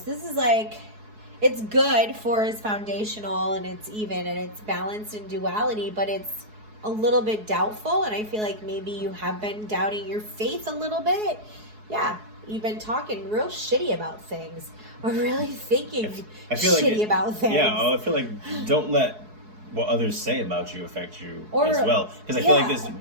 This is like, it's good for it's foundational and it's even and it's balanced in duality, but it's a little bit doubtful, and I feel like maybe you have been doubting your faith a little bit. Yeah, you've been talking real shitty about things or really thinking shitty about things. Yeah, I feel like don't let what others say about you affect you as well. Because I feel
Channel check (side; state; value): left; late; 4.7 ms